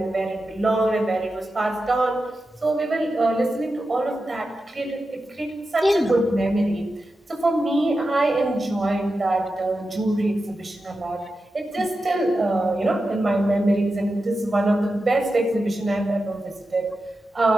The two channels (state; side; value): normal; both; correlation 0.91